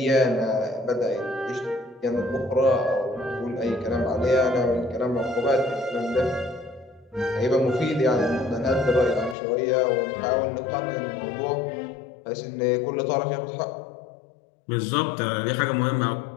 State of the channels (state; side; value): drops out; right; at 9.3 s